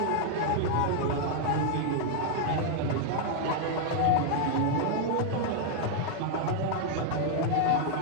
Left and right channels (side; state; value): both; different; correlation 0.00